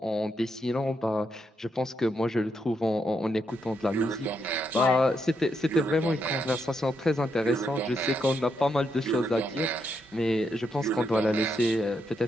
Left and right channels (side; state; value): both; normal; correlation 0.80